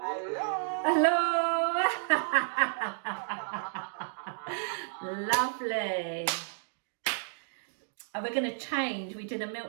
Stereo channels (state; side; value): silent; left; digital silence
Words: Hello. Lovely. And we're going to change. We did a